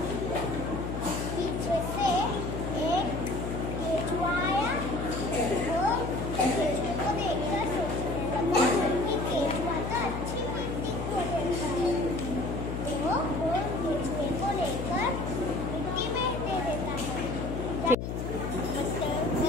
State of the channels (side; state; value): left; noise; hum, 4 dB below the sound